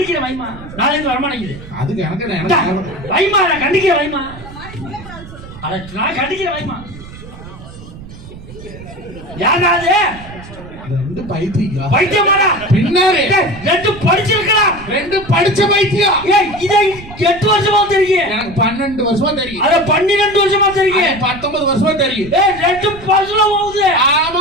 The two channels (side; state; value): right; noise; rumble, 16 dB below the sound